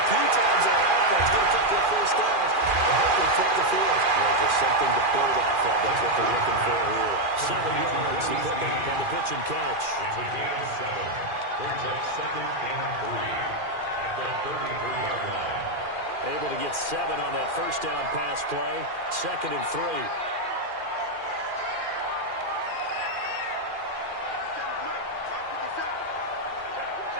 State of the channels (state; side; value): late; left; 2.4 ms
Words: times on offense, get a couple of first downs, and hopefully flip the field. Well, just something to build off of. That's what they're looking for here. 7 yards to pick up on the pitch and catch. It's a gain of 7. Brings up 2nd and 3 at the 33-yard line. Able to get 7 on that first down pass play. 2nd and 3.